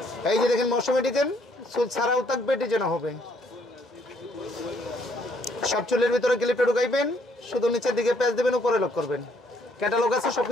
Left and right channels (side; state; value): both; normal; correlation 0.67